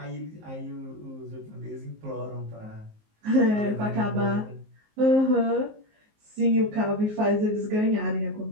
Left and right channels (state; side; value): late; left; 19 ms